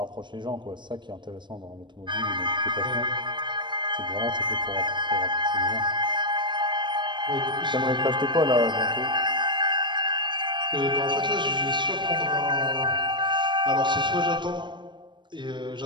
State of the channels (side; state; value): left; late; 0.22 ms